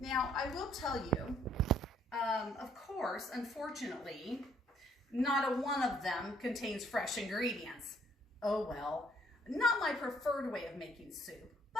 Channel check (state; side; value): normal; both; correlation 0.65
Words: I will tell you, of course, unfortunately, not a one of them contains fresh ingredients. Oh well, not my preferred way of making soup,